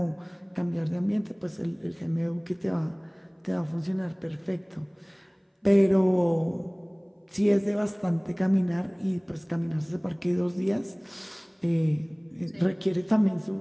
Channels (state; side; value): identical; both; correlation 1.00